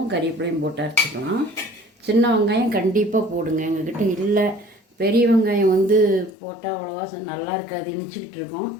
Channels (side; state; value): right; drops out; at 6.4 s